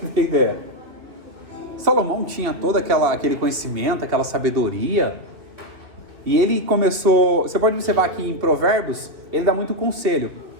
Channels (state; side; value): late; left; 2.7 ms